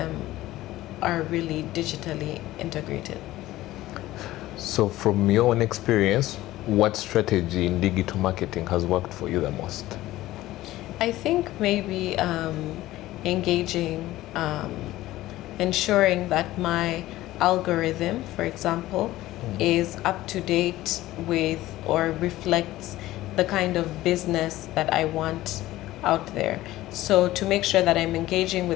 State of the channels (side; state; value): right; quieter; 16.1 dB